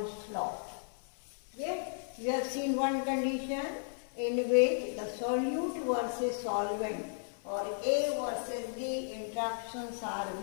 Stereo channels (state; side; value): silent; right; 55 dB below the other